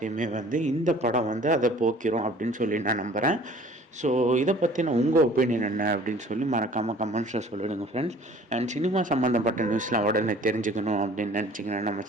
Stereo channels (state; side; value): normal; both; correlation 0.50